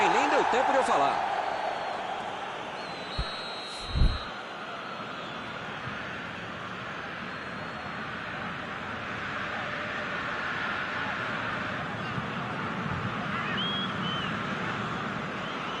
Nem deu tempo de eu falar.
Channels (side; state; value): both; identical; correlation 1.00